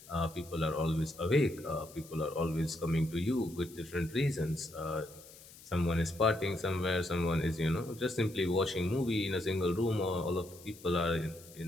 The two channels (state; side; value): noise; left; hiss, 20 dB below the sound